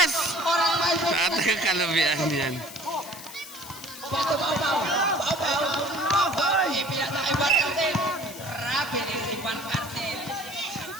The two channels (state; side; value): noise; left; hiss, 14 dB below the sound